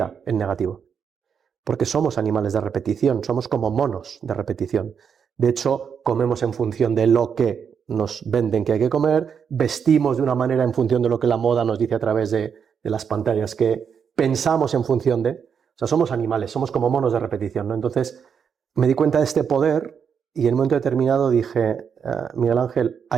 en negativo. Porque somos animales de repetición, somos como monos de repetición. De hecho, comemos en función de lo que nos venden que hay que comer, vestimos de una manera en función de lo que la moda nos dice a través de las pantallas, que pensamos en función de... O sea, somos animales, somos como monos de repetición, ¿no? Entonces, me di cuenta de este poder y en un momento determinado dije, Miguel Ángel,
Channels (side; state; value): left; quieter; 7.0 dB